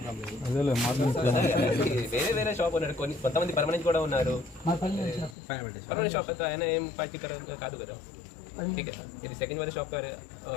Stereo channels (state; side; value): drops out; right; at 5.4 s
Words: లేదు. వేరే షాప్ ఉన్నారు, కొంతమంది పర్మనెంట్ కూడా ఉన్నారు. పర్మనెంట్ షాప్ అయితే ఆయన ఏం పార్టీ కాదు కదా. ठीक है, यदि सेकंड वाले शॉप पर